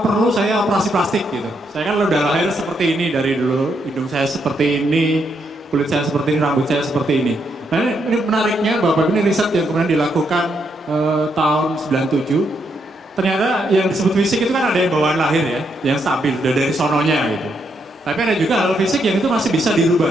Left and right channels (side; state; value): both; normal; correlation 0.77